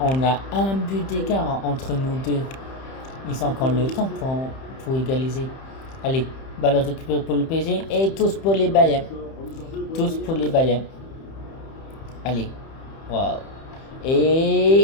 a un but d'écart entre nous deux. Ils ont encore le temps pour égaliser. Allez, balle récupérée pour le PSG et tous pour les Bayern. Tous pour les Bayern. Allez. Waouh.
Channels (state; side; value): late; right; 31 ms